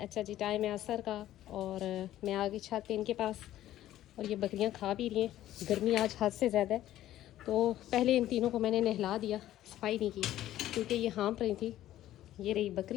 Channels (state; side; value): quieter; right; 13.5 dB